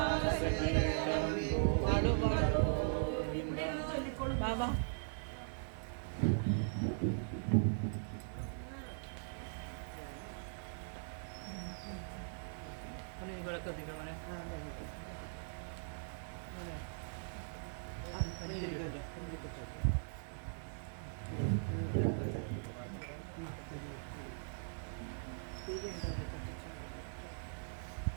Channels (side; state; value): left; silent; 51 dB below the other